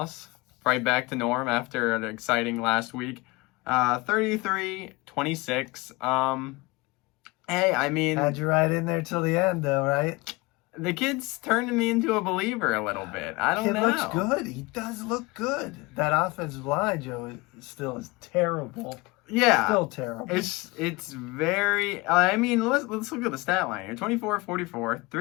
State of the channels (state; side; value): quieter; right; 23.9 dB